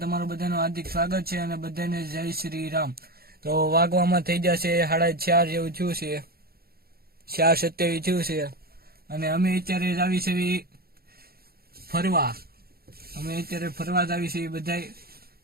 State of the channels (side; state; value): left; late; 0.45 ms